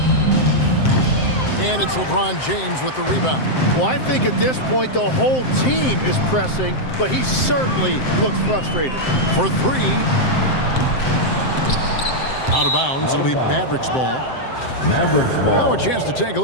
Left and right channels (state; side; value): late; right; 7.7 ms